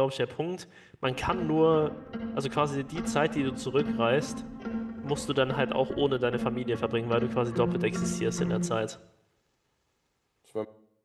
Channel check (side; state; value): both; identical; correlation 1.00